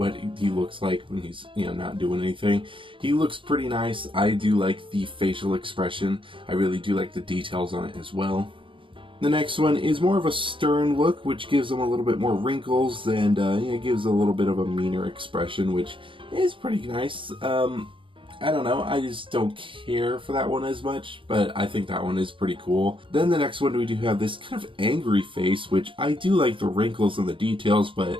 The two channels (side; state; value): left; late; 0.25 ms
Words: he looks like when he's not doing anything. He looks pretty nice. I do like the facial expression. I really do like the details on it as well. The next one is more of a stern look, which gives him a little bit more wrinkles, and it gives a little bit of a meaner expression, which is pretty nice. I don't know, I just don't care for that one as much, but I think that one is pretty cool. Then the next one, we do have this kind of angry face, which I do like the wrinkles and the details, but